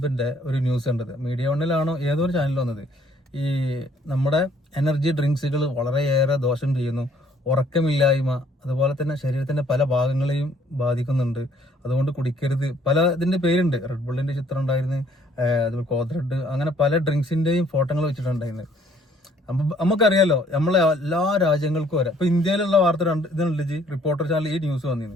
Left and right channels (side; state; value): both; normal; correlation 0.62